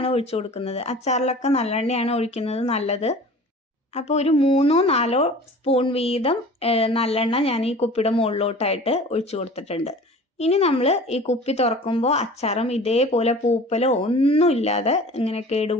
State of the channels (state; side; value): normal; both; correlation 0.42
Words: ഒഴിച്ചു കൊടുക്കുന്നത്. അച്ചാറിലൊക്കെ നല്ലെണ്ണയാണ് ഒഴിക്കുന്നത് നല്ലത്. അപ്പോൾ ഒരു 3-4 സ്പൂൺ വീതം നല്ലെണ്ണ ഞാൻ ഈ കുപ്പിയുടെ മുകളിലോട്ടായിട്ട് ഒഴിച്ചു കൊടുത്തിട്ടുണ്ട്. ഇനി നമ്മൾ ഈ കുപ്പി തുറക്കുമ്പോൾ അച്ചാറും ഇതേപോലെ പൂപ്പലോ ഒന്നും ഇല്ലാതെ ഇങ്ങനെ